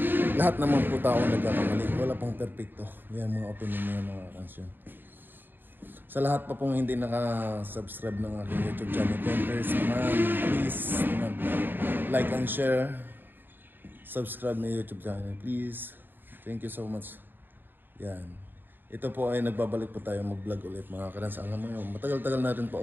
lahat naman po tao nagkakamali. Wala pong perfecto. Yan mga opinion niya mga kansyon. Sa lahat pa pong hindi naka-subscribe ng aking YouTube channel, please like and share. Subscribe my YouTube channel, please. Thank you so much. Yan. Ito po ay nagbabalik po tayo mag-vlog ulit mga karans. Alam mo yun, matagal-tagal na rin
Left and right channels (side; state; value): left; late; 0.094 ms